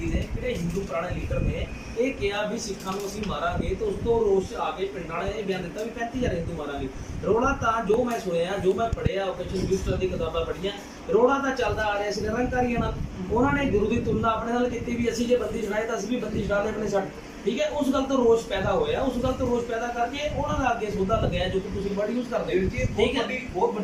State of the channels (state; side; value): identical; both; correlation 1.00